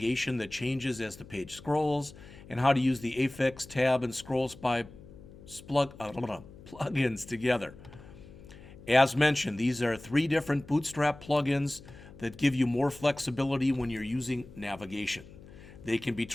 that changes as the page scrolls, and how to use the Affix Tab and Scroll Spy plugins together. As mentioned, these are 3 different Bootstrap plugins that give you more flexibility when you're using navigation. They can be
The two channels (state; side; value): noise; left; hum, 19 dB below the sound